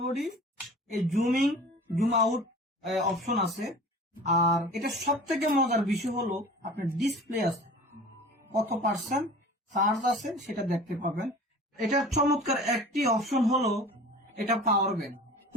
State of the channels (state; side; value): normal; both; correlation 0.41